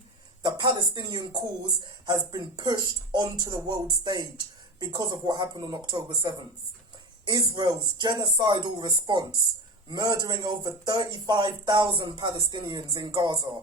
the Palestinian cause has been pushed onto the world stage because of what happened on October 7th. Israel's genocidal response, murdering over 35,000 Palestinians in Gaza,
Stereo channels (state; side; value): normal; both; correlation 0.26